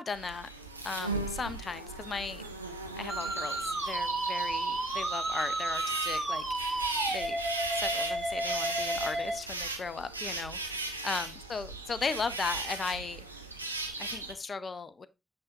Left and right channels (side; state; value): both; normal; correlation 0.49